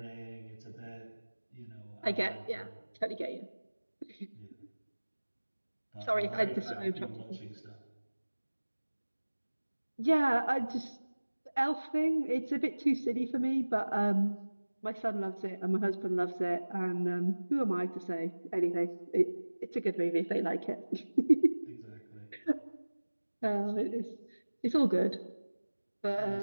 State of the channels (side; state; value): both; inverted; correlation -1.00